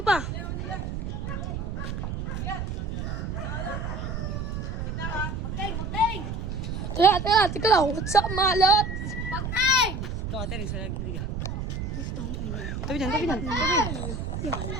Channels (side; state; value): right; noise; rumble, 4 dB below the sound